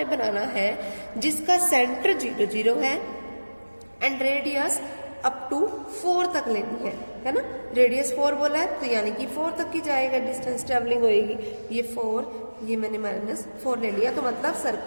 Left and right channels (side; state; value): both; inverted; correlation -1.00